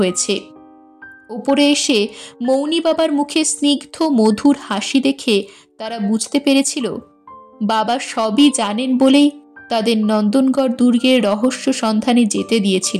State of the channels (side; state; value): both; identical; correlation 1.00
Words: ওপরে এসে মৌনী বাবার মুখে স্নিগ্ধ মধুর হাসি দেখে তারা বুঝতে পেরেছিল বাবা সবই জানেন বলেই তাদের নন্দনগড় দুর্গের রহস্য সন্ধানে যেতে